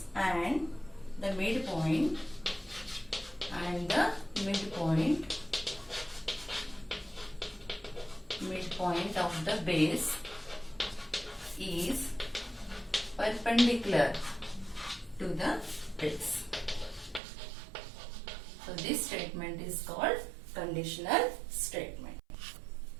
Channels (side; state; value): left; drops out; at 17.2 s